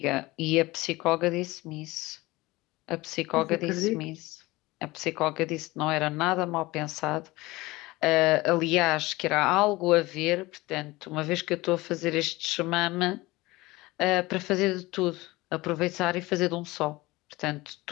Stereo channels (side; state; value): right; quieter; 20.7 dB